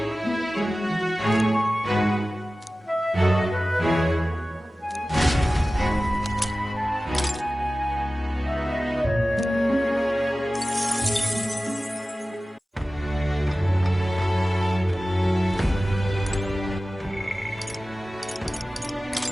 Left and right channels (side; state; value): both; normal; correlation 0.96